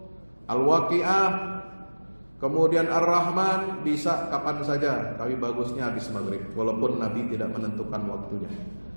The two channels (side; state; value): both; inverted; correlation -1.00